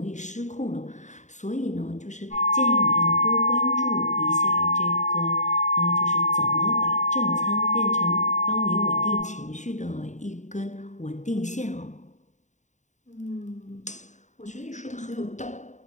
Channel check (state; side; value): late; right; 0.35 ms